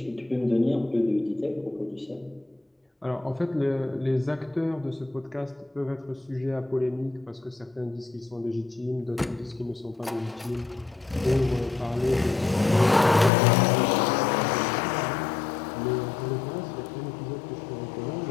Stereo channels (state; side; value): drops out; right; at 13.3 s